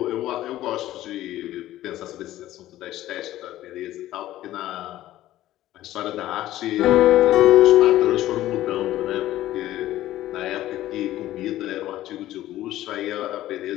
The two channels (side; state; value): right; quieter; 14.5 dB